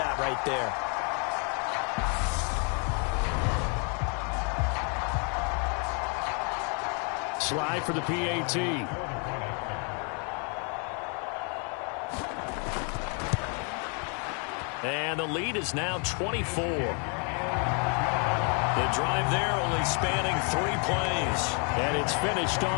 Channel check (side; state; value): right; quieter; 37.9 dB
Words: right there. Slide for the PAT. And the lead is now 24. The drive there only spanning 3 plays. And it's finished